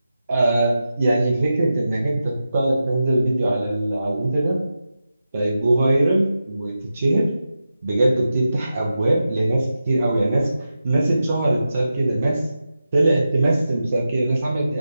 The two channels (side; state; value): both; inverted; correlation -0.91